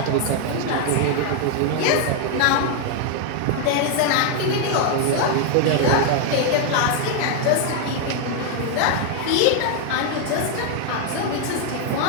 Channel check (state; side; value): different; both; correlation 0.00